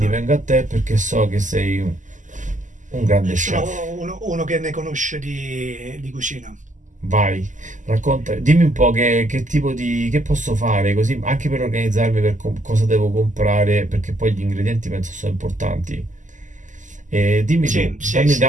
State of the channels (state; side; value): late; left; 0.37 ms